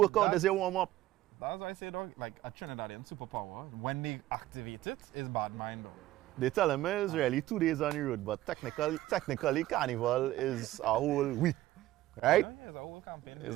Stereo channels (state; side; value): quieter; left; 15.5 dB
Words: this is your warm up. That's why I say, dog, like a Trinidadian superpower, when they activate it, is bad mind, dog. They tell me it's really 2 days on the road, but technically carnival is a whole week, right? Yeah, it's a whole campaign. It's